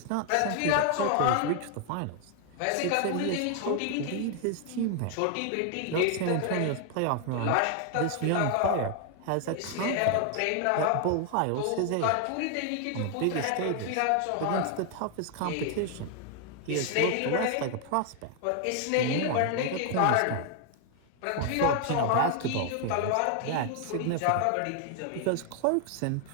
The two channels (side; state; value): both; different; correlation 0.00